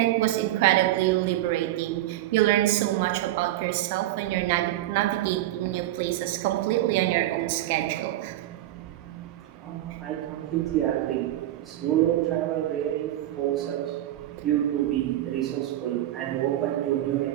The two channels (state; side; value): quieter; left; 14.4 dB